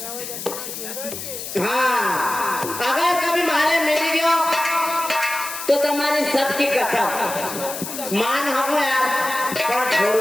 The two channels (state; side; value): noise; left; hiss, 8 dB below the sound